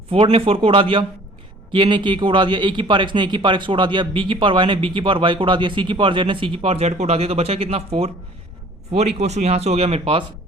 4 ने 4 को उड़ा दिया, k ने k को उड़ा दिया, a की पावर x ने a की पावर x को उड़ा दिया, b की पावर y ने b की पावर y को उड़ा दिया, c की पावर z ने c की पावर z को उड़ा दिया। तो बचा कितना 4 इक्वल टू यहाँ से हो गया मेरे पास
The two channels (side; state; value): both; normal; correlation 0.51